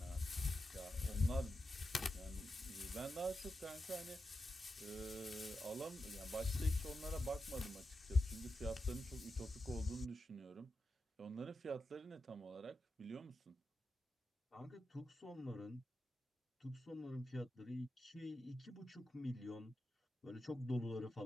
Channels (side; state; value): both; normal; correlation 0.89